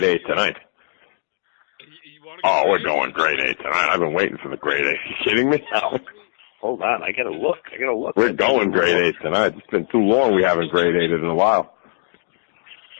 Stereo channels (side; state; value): right; silent; digital silence